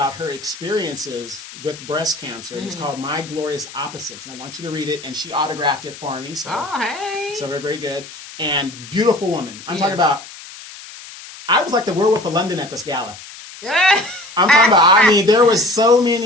her experiences with breast cancer. Mm-hmm. It's called My Glorious Opposites, and I want you to read it. And she autographed it for me. So, oh, hey. So very, very good. And beautiful woman. I'm talking about, I was like the werewolf of London at this gala. I'm talking about, I mean, there was so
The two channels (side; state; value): left; noise; hiss, 16 dB below the sound